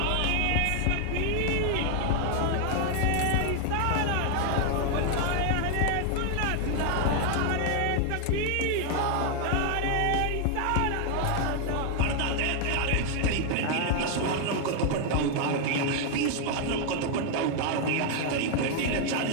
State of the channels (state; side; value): different; both; correlation 0.00